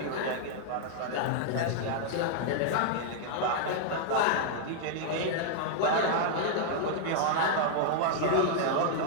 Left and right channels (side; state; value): both; different; correlation -0.01